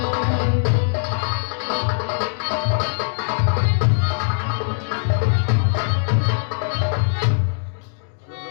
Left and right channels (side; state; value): right; silent; digital silence